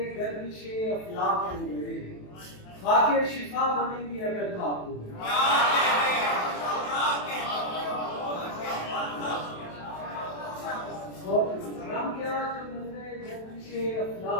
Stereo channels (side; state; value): right; late; 27 ms